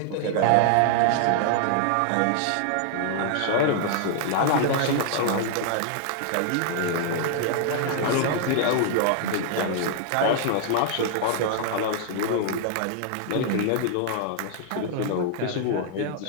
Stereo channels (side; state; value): both; different; correlation -0.01